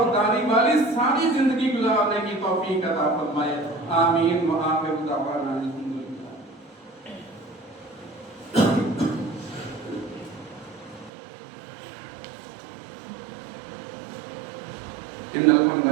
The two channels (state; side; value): drops out; left; at 11.1 s